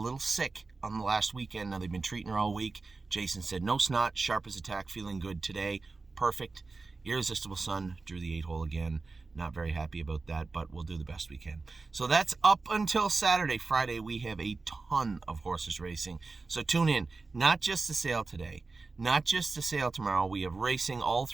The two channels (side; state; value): left; quieter; 3.9 dB